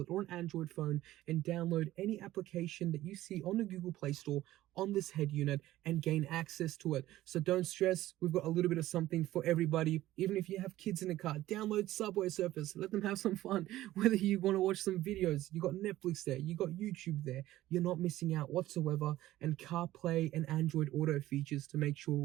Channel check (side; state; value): left; quieter; 15.2 dB